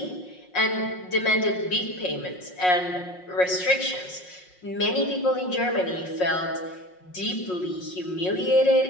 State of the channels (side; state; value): right; late; 5.5 ms